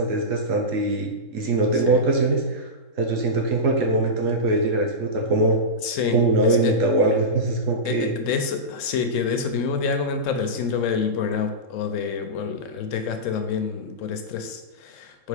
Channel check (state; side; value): late; right; 3.7 ms